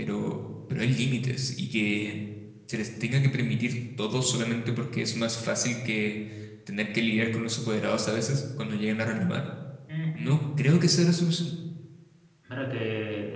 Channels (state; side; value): identical; both; correlation 1.00